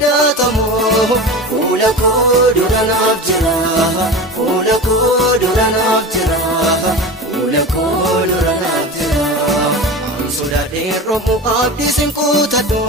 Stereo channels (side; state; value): both; normal; correlation 0.30